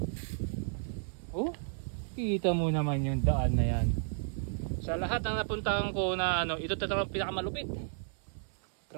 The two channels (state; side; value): silent; left; 56 dB below the other